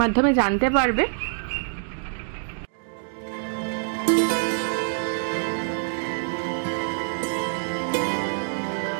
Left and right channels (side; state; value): left; silent; digital silence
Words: মাধ্যমে জানতে পারবে।